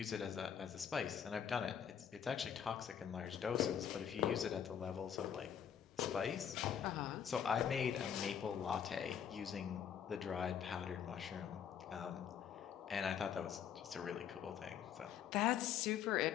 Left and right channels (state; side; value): quieter; right; 8.5 dB